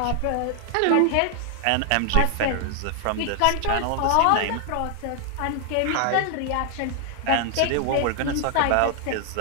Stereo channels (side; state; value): both; different; correlation 0.00